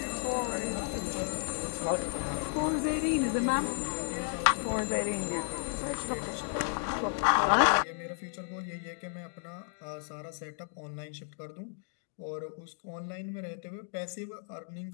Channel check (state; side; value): silent; right; digital silence